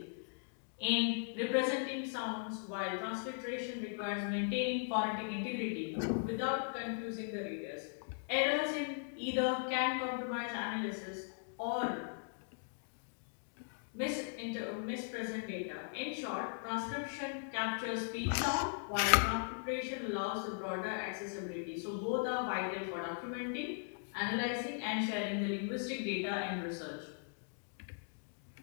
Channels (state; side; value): silent; right; digital silence